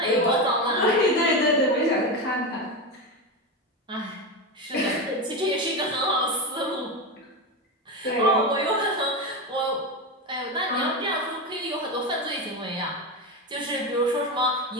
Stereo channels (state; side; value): normal; both; correlation 0.16